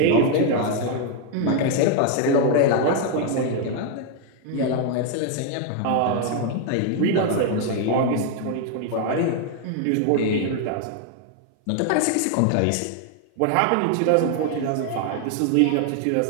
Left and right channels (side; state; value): both; different; correlation 0.00